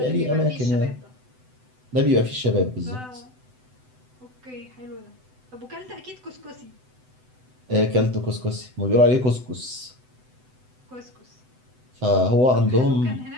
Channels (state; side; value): late; left; 7.9 ms